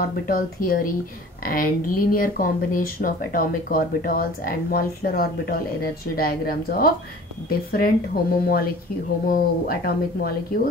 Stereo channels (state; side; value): normal; both; correlation 0.45